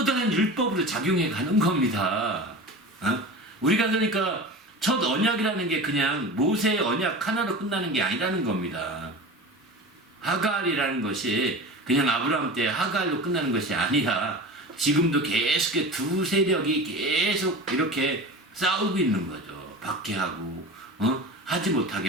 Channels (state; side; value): normal; both; correlation 0.32